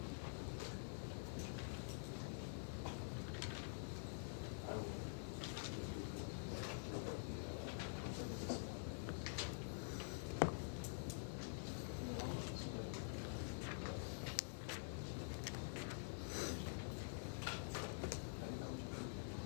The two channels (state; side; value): silent; right; digital silence